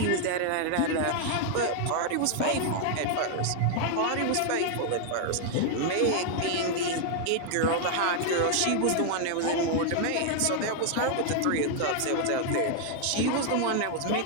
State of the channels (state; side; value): different; both; correlation 0.00